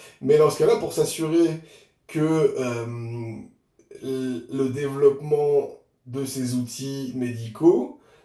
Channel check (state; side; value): identical; both; correlation 1.00